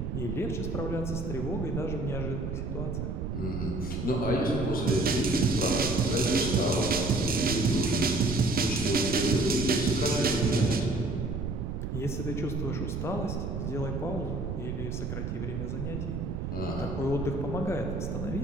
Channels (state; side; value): noise; right; rumble, 4 dB below the sound